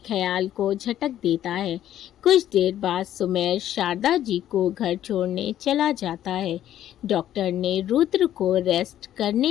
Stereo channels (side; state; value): right; quieter; 11.8 dB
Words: ख्याल को झटक देता है। कुछ देर बाद सुमेर शारदा जी को घर छोड़ने चला जाता है। डॉक्टर ने रुद्र को रेस्ट